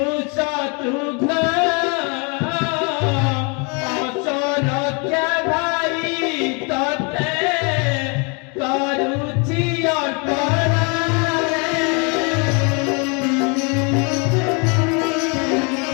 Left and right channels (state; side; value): quieter; right; 33.3 dB